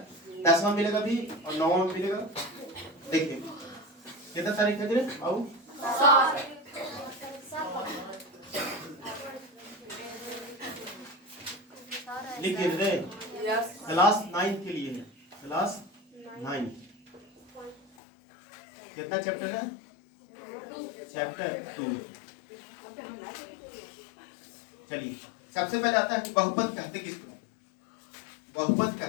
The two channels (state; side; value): drops out; right; at 17.9 s